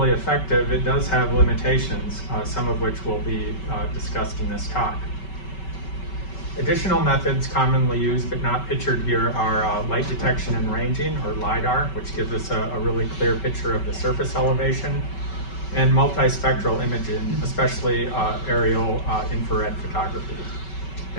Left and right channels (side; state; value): right; late; 5.3 ms